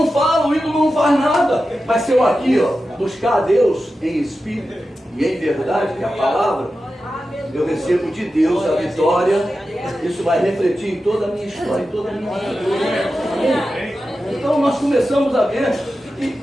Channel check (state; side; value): normal; both; correlation 0.92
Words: fala, o ídolo não faz nada. Mas se eu aqui, ó, buscar a Deus em espírito e em verdade, que é a palavra, eu recebo de Deus a vitória. Isso vai refletir em toda a minha história, em toda a minha vida. Então nós começamos a ver que